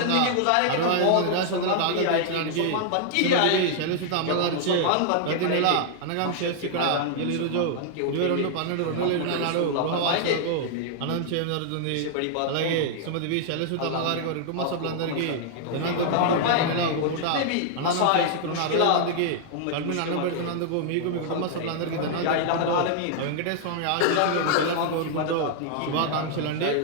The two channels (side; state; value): both; different; correlation -0.01